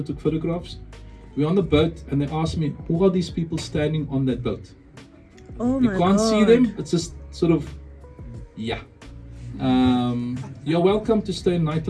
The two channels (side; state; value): both; identical; correlation 1.00